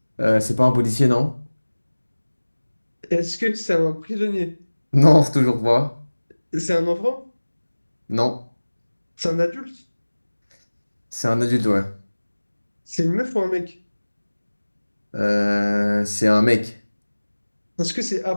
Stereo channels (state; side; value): inverted; both; correlation -1.00